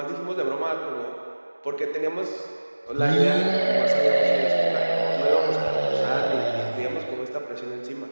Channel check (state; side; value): inverted; both; correlation -1.00